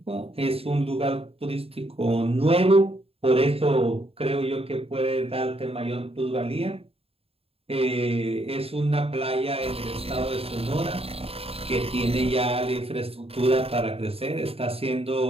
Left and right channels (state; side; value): late; left; 0.28 ms